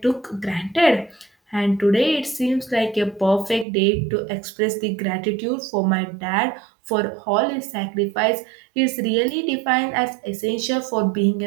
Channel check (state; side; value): drops out; left; at 3.7 s